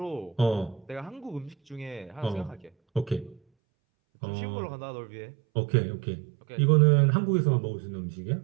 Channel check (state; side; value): drops out; left; at 3.4 s